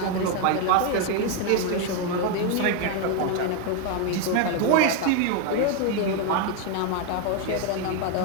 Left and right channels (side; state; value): both; different; correlation 0.01